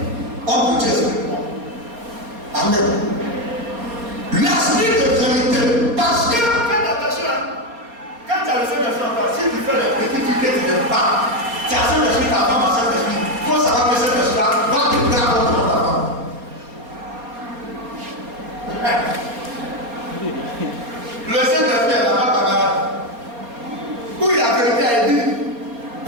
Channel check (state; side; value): late; left; 4.3 ms